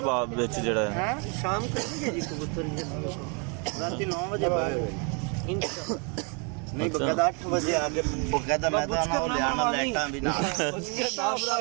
बाद विच जेड़ा है? शाम करेंगे जी कबूतर रात 9 बजे नहीं बकायदा 8 बजे आके बकायदा मैदान और ले आना लाइटां भी ना उसके नाम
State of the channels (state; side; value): quieter; left; 35.1 dB